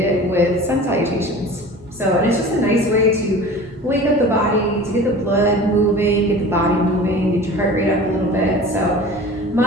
with sun salutations. So, and it's just a nice way to wake up the body, to get the blood moving, get the body moving, get your heart rate up a little bit. So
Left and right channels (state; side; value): normal; both; correlation 0.39